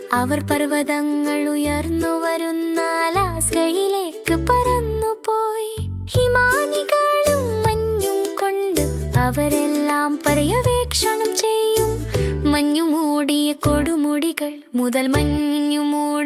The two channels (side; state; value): both; identical; correlation 1.00